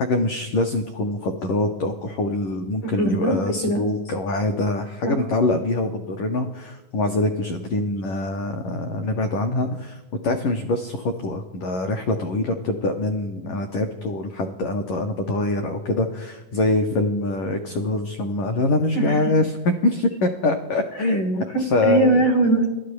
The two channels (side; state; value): right; late; 11 ms